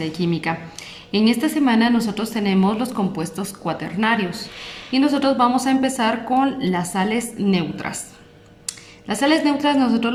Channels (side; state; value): both; identical; correlation 1.00